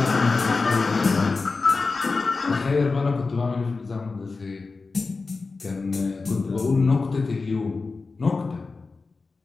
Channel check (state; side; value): quieter; right; 4.0 dB